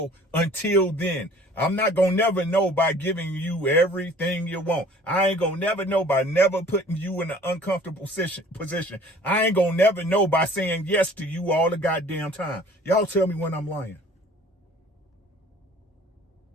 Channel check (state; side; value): normal; both; correlation 0.51